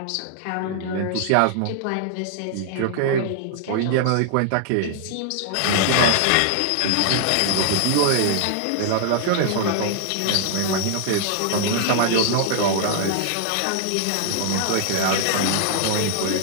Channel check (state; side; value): different; both; correlation -0.01